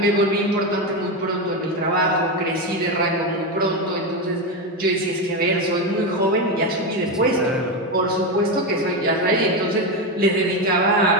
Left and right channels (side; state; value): both; normal; correlation 0.12